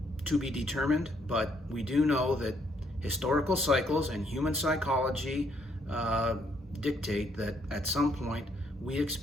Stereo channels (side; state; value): both; normal; correlation 0.70